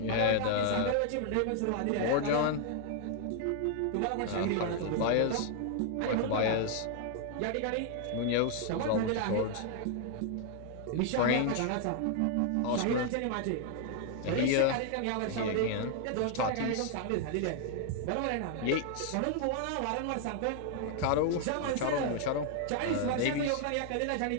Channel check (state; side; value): different; both; correlation 0.00